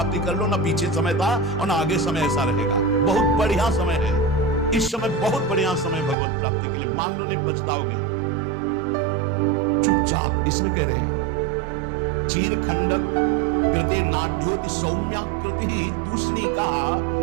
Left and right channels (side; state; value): left; drops out; at 6.2 s